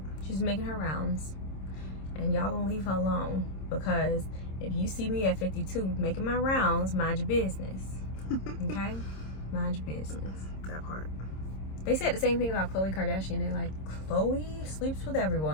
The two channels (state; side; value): late; right; 26 ms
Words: She's making her rounds. And y'all gonna leave her alone. Because if you see me at 52 making my rounds, mind your business. Okay? Mind your business. That part. They said the same thing about Khloe Kardashian. They're like, Khloe sleeps with